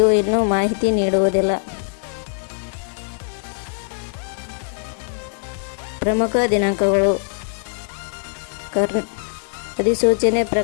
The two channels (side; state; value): right; silent; 64 dB below the other